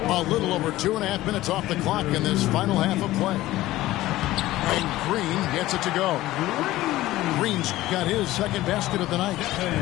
A little over 2.5 minutes off the clock in this final half of play. And Green gets it to go. Green's got his second basket of the night.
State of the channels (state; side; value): quieter; right; 16.3 dB